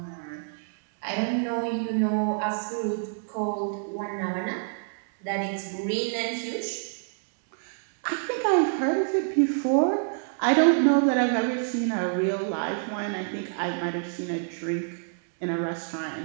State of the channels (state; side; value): silent; left; digital silence